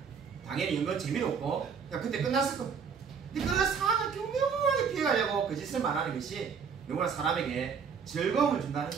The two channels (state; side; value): quieter; left; 6.4 dB